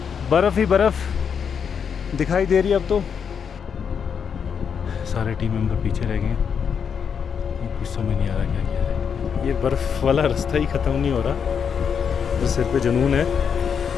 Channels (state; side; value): quieter; right; 7.0 dB